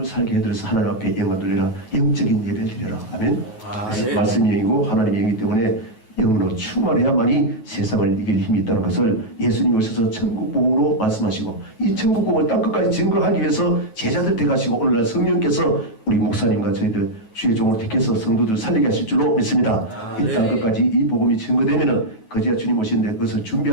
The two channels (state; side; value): late; right; 9.1 ms